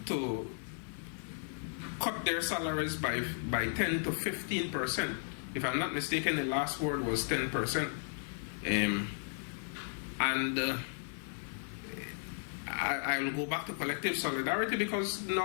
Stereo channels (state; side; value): silent; right; digital silence